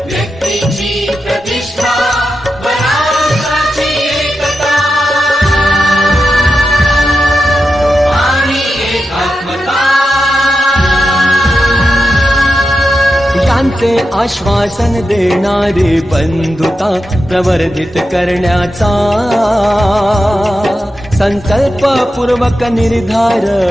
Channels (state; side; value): normal; both; correlation 0.89